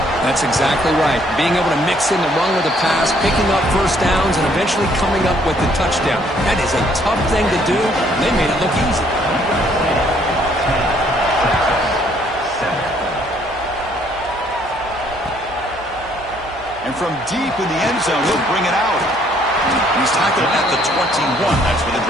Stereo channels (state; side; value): noise; right; hum, 21 dB below the sound